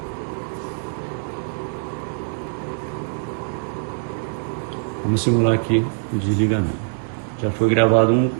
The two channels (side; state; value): left; silent; 63 dB below the other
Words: Vamos simular aqui o desligamento. Já foi gravado